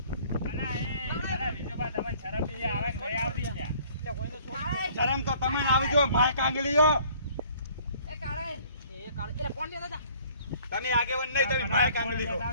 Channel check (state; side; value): inverted; both; correlation -0.57